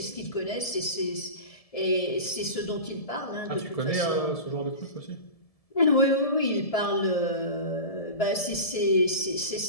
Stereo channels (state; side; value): late; right; 1.7 ms